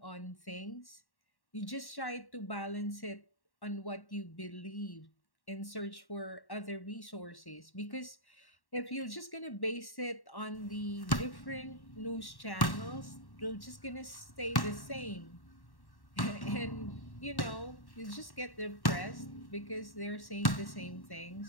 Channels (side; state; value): right; late; 1.1 ms